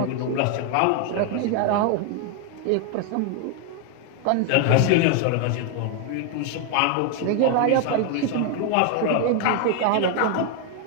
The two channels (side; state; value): both; different; correlation 0.01